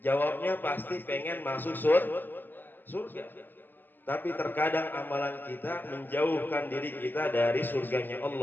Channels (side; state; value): right; late; 0.091 ms